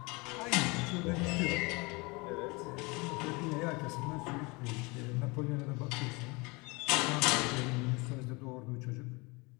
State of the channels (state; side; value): quieter; right; 26.7 dB